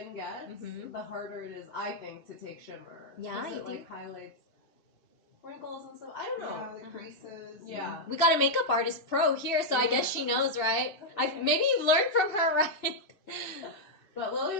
gets, the harder it is, I think, to take shimmer. Yeah, it like highlights wrinkles and stuff. I don't know. Yeah, the creases. Yeah. We got a makeup artist pro here, so I guess she knows, right? Maybe you've learned from her, right? But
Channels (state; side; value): late; right; 2.5 ms